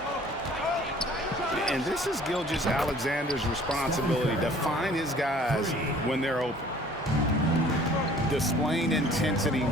And this is Gilgeous-Alexander's responsibility to find his guys when they're open. displaying intensity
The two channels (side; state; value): both; normal; correlation 0.53